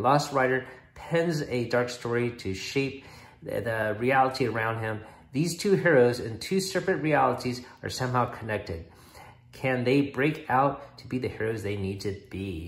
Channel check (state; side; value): identical; both; correlation 1.00